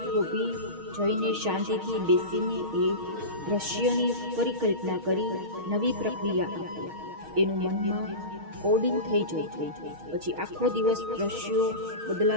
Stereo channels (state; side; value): late; left; 6.4 ms